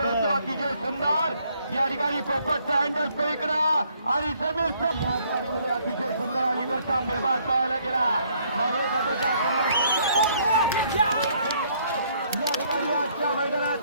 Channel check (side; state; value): both; inverted; correlation -0.66